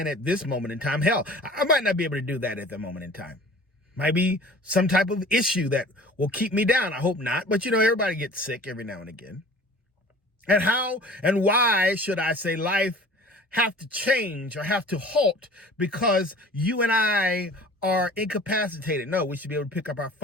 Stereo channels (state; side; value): normal; both; correlation 0.45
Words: at this moment in time. Hell, I might not be able to do that at the moment in time. Might be some type of issue that will keep me down. I hope not. But, everybody gets sick every now and again. And how and why should I say life have to change or have to halt because you and I are incapacitated? No, we should be able to pick up our